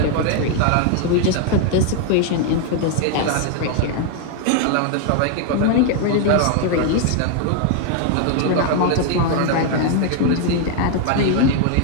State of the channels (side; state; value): both; different; correlation 0.00